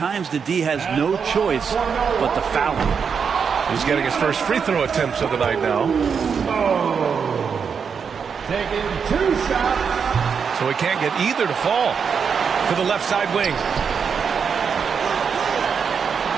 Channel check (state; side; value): quieter; left; 6.4 dB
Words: the D has no choice but to foul him. He's getting his first free throw attempts of the night now. Taking 2 shots. So he can't get either to fall. To the left side wing.